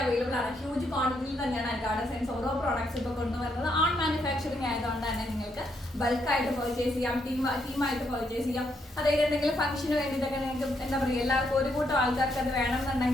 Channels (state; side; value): normal; both; correlation 0.76